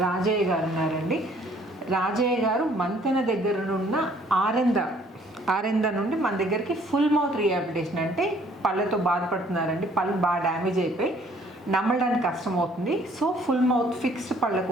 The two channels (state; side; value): normal; both; correlation 0.60